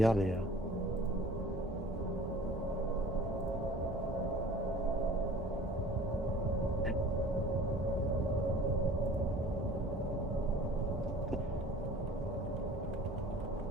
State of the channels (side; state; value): both; normal; correlation 0.46